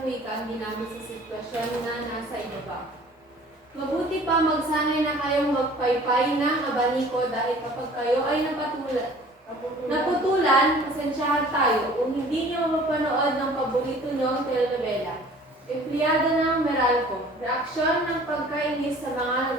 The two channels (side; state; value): both; normal; correlation 0.49